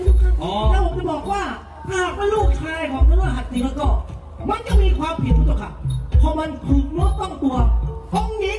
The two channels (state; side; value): identical; both; correlation 1.00